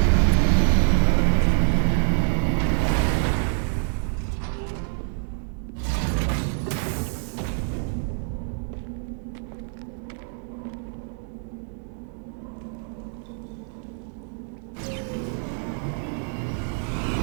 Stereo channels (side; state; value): left; silent; 61 dB below the other